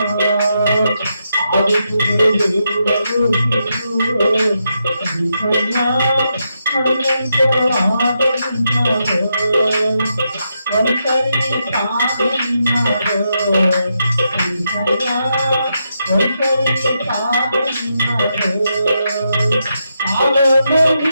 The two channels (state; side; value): inverted; both; correlation -0.83